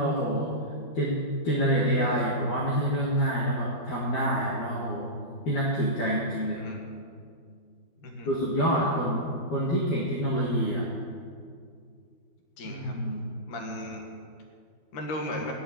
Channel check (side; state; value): right; late; 12 ms